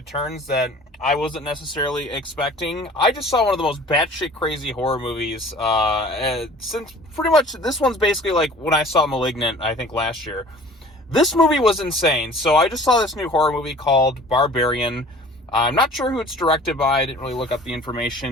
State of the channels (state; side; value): normal; both; correlation 0.47